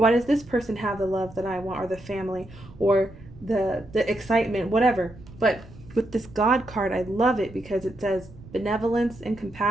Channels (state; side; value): noise; right; rumble, 20 dB below the sound